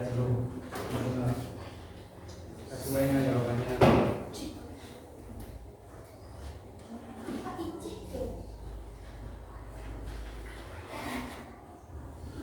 dulu. Sesuainya jawabannya.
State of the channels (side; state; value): both; identical; correlation 1.00